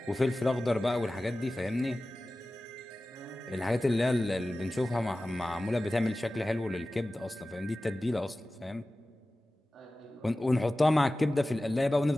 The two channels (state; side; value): normal; both; correlation 0.96